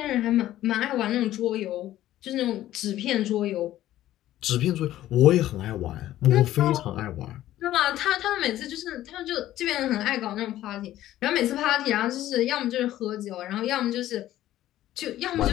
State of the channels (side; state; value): right; quieter; 13.8 dB